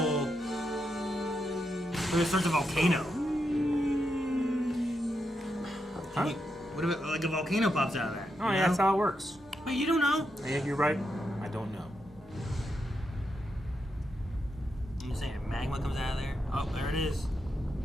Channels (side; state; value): both; normal; correlation 0.84